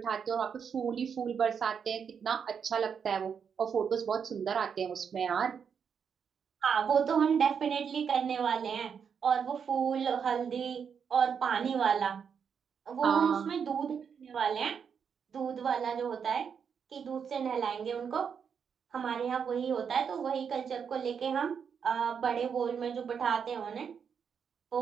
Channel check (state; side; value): quieter; left; 6.9 dB